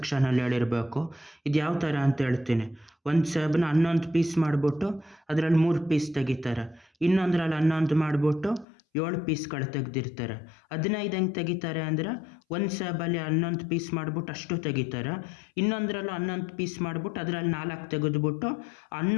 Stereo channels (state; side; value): drops out; right; at 8.7 s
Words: ಹೇಳಿರಬೇಕು. ಇದು ಯಾವ ಥರ ಅಂತ ಹೇಳ್ತೀನಿ. ಒಂದು ಸೇಬನ್ನ 11 ಪೀಸ್ ಮಾಡಿಬಿಟ್ಟು ಅದರಲ್ಲಿ 3 ಪೀಸ್ ತೆಗಿತಾರೆ. ಇನ್ನೊಂದರಲ್ಲಿ 11 ಮಾಡಿಬಿಟ್ಟು 7 ಪೀಸ್ಗಳು ತೆಗೆದಿರ್ತಾರೆ. 15 ಹೆಂಗೆ ತೆಗಿತಾರೆ ಅಂದರೆ ಒಂದು ಸೇಬಲ್ಲಿ 11 ಪೀಸ್ ಮಾಡಿಬಿಟ್ಟು ಅಷ್ಟು ತೆಗಿತಾರೆ. ಇನ್ನೊಂದರಲ್ಲೂ 11 ಪೀಸ್ ಮಾಡಿಬಿಟ್ಟು ಅದರಲ್ಲಿ 4 ತೆಗೆದುಬಿಟ್ಟು